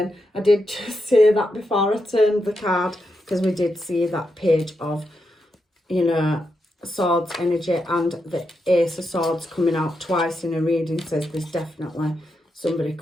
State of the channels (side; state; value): both; normal; correlation 0.85